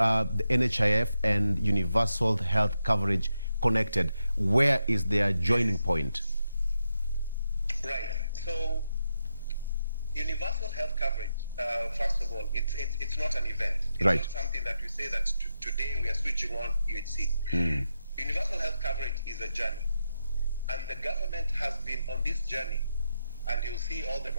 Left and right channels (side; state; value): both; inverted; correlation -0.86